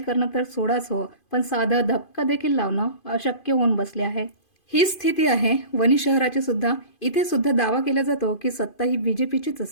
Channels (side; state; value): right; late; 2.5 ms